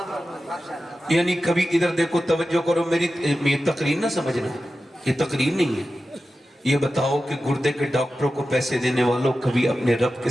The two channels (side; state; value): both; normal; correlation 0.93